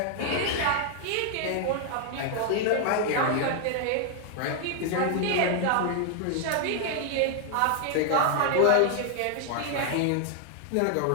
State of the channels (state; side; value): different; both; correlation 0.00